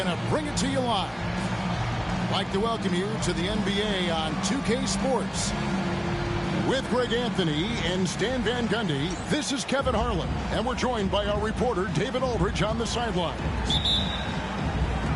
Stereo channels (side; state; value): both; identical; correlation 1.00